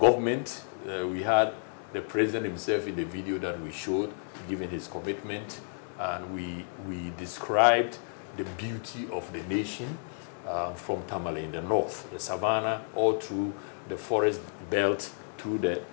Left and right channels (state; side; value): silent; right; digital silence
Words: We had the president himself in the video that we showed, giving his commitment, and we described the beauty of the nation from Tamale in the north, the savannah, all through the forest belt, through the